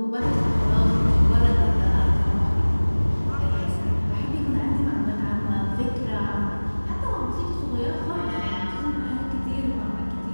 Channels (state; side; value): inverted; both; correlation -1.00